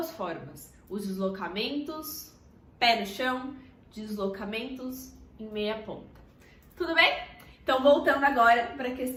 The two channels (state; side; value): identical; both; correlation 1.00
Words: formas. Os deslocamentos, pé no chão, deslocamentos em meia ponta. Tudo bem? Então, voltando agora para a